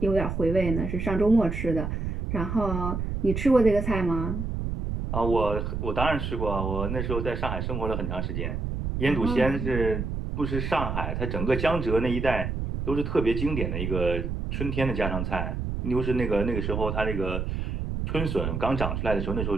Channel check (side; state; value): right; noise; rumble, 3 dB below the sound